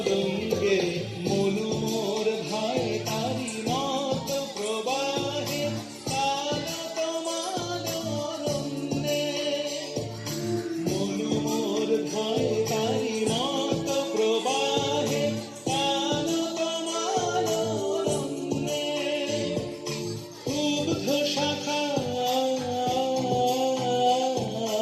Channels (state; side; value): identical; both; correlation 1.00